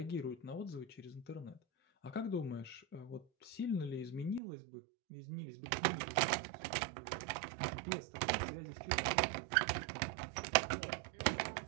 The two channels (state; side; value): drops out; left; at 4.4 s